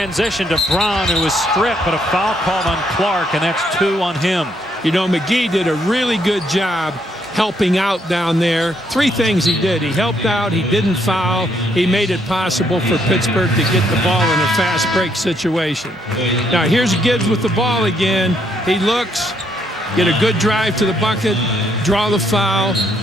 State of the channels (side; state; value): both; normal; correlation 0.72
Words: to Brown, who was stripped, but a foul called on Clark, and that's 2 on him. You know, McGee did a really good job helping out down there. 3 things he did. He helped out. He didn't foul. He made it possible for Pittsburgh to get the ball in a fast break situation. Now, here's Gibbs with the ball again. He looks. Get a good drive to the bucket, draw the foul.